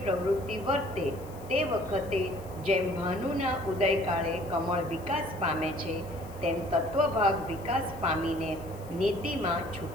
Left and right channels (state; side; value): noise; left; hiss, 23 dB below the sound